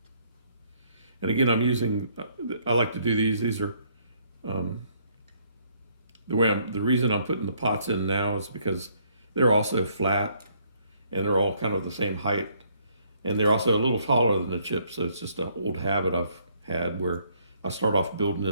And again, I like to do these. These are, the reason I'm putting the pots in now is because they're also flat and they're all kind of the same height. And they're also a little taller than the chip. So it's just an old habit I've had where I start off building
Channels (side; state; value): both; inverted; correlation -0.67